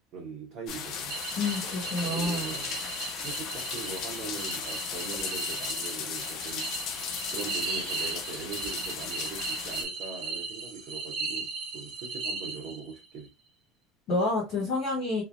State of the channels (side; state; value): both; normal; correlation 0.34